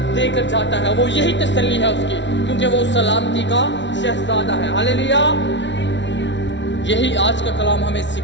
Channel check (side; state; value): right; late; 0.52 ms